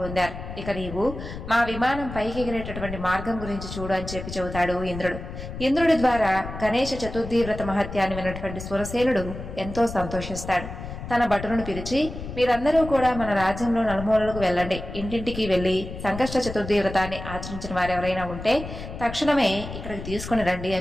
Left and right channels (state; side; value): noise; left; rumble, 9 dB below the sound